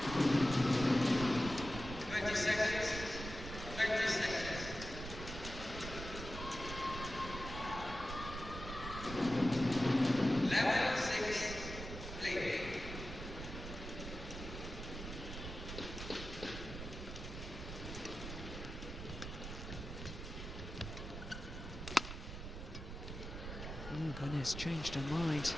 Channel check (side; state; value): right; noise; rumble, 8 dB below the sound